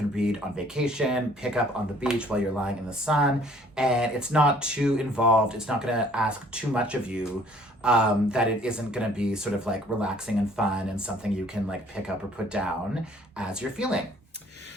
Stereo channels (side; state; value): both; normal; correlation 0.57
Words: read on vacation, pick up on the beach while you're lying in the sun, and it's not too involved. It's not going to ask too much of you, that it isn't going to be sort of like relaxing and fun and something you can like pick up or put down as you're feeling.